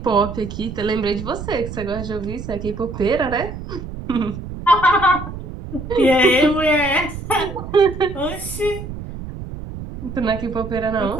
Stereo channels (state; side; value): noise; right; rumble, 9 dB below the sound